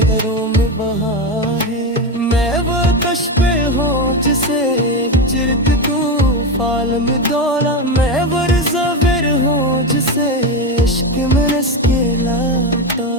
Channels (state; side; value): normal; both; correlation 0.15